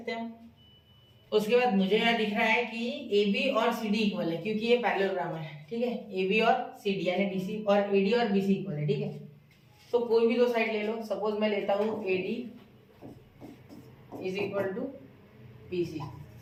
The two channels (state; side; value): identical; both; correlation 1.00